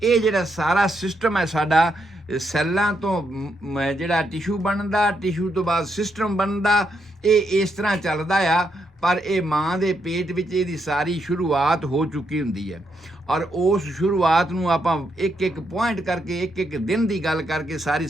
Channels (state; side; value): normal; both; correlation 0.79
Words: ਇਹ ਜਿਹੜਾ ਸਾਰਾ ਸਿਸਟਮ ਹੈ ਸਾਡਾ, ਸੈੱਲਾਂ ਤੋਂ ਜਿਹੜਾ ਟਿਸ਼ੂ ਬਣਦਾ, ਟਿਸ਼ੂ ਤੋਂ ਬਾਅਦ ਸਿਸਟਮ ਬਣਦਾ, ਇਹ ਇਸ ਤਰ੍ਹਾਂ ਚੱਲਦਾ ਆ। ਪਰ ਇਹ ਮਾਂ ਦੇ ਪੇਟ ਵਿੱਚ ਇਹਦੀ ਸਾਰੀ ਸ਼ੁਰੂਆਤ ਹੋ ਚੁੱਕੀ ਹੁੰਦੀ ਹੈ। ਔਰ ਉਸ ਸ਼ੁਰੂਆਤ ਨੂੰ ਆਪਾਂ ਇੱਕ ਪੁਆਇੰਟ ਕਰਕੇ, ਇੱਕ ਦਿਨ ਦੀ ਗੱਲ ਕਰਕੇ ਸਾਰੀ